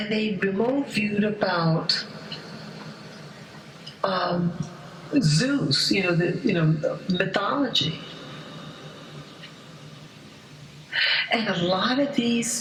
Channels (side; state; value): both; identical; correlation 1.00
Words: they remote viewed about Zeus, the mythology. And a lot of